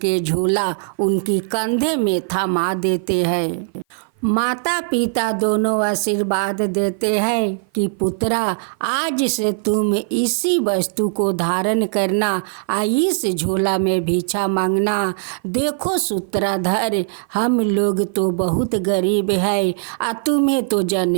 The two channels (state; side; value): silent; left; 56 dB below the other